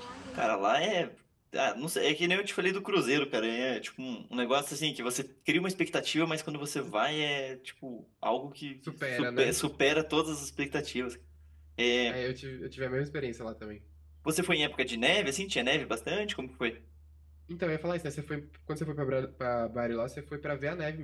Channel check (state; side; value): identical; both; correlation 1.00